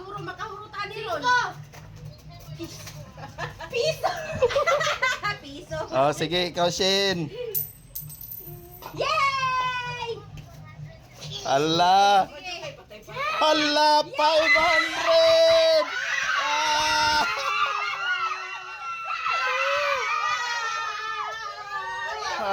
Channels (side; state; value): both; identical; correlation 1.00